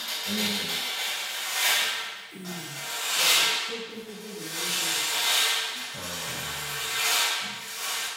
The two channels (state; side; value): identical; both; correlation 1.00